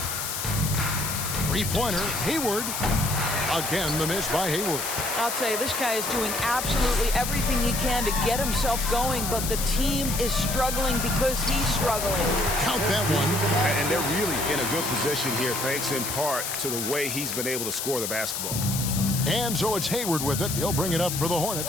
3-pointer, Hayward. Again, the miss by Hayward. I'll tell you, this guy is doing absolutely everything he can to get himself going, but the team is struggling because he's struggling. Count that one. And they're really in a good position here, thanks in part to the way he's been able to score the basketball. And so it's Hayward with it. He'll bring it up for the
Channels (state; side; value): noise; left; hiss, 3 dB below the sound